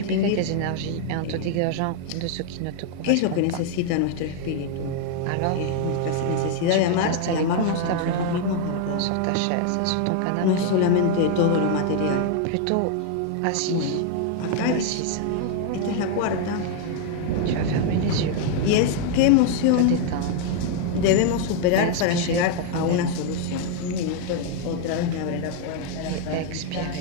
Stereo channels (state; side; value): different; both; correlation 0.00